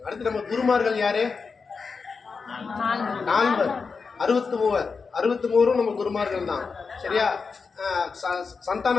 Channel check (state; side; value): quieter; right; 5.0 dB